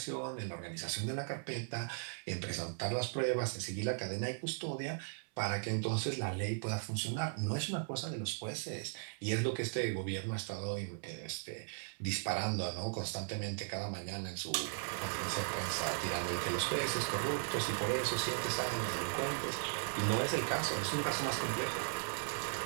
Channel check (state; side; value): silent; left; 53 dB below the other